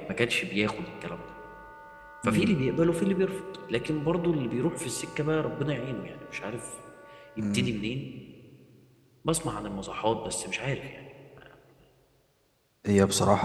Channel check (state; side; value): identical; both; correlation 1.00